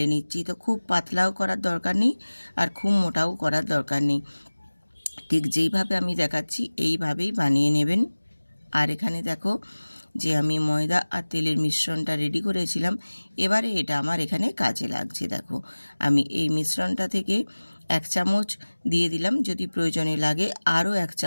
নিচ্ছি। তো খুব পাতলাও করার দরকার নেই আর খুব মোটাও করার দরকার নেই, ঠিক যেইভাবে আমি দেখাচ্ছি এইভাবেই বানিয়ে নেবেন। আর এখানে দেখো যে আমি ময়দা আর তেলের মিশ্রণটা রেডি করেছিলাম, এবারে এটা আমার এখানে কাজে লাগছে। দেখো আমি এই মিশ্রণটা থেকে 1 চামচ দিয়ে দিলাম, যদি প্রয়োজনে লাগে আরও 1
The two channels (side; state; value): both; inverted; correlation -1.00